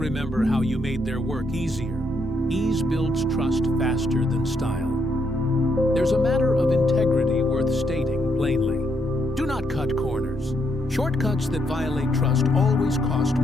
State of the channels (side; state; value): both; normal; correlation 0.76